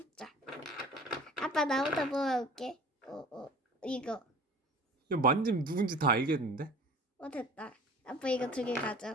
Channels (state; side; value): normal; both; correlation 0.43